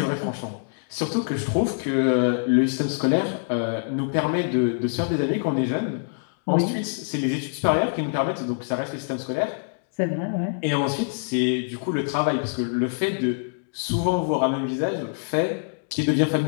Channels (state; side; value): silent; right; digital silence